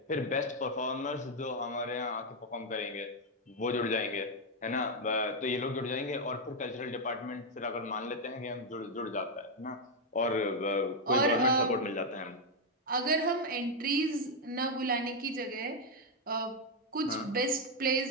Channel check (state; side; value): normal; both; correlation 0.02